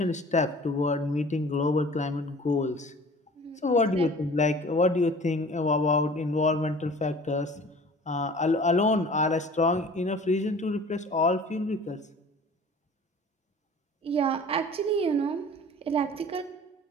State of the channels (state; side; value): normal; both; correlation 0.45